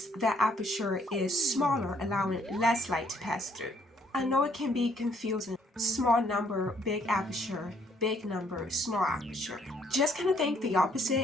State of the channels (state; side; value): normal; both; correlation 0.67